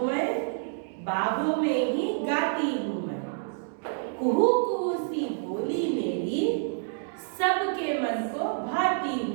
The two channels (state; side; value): silent; left; digital silence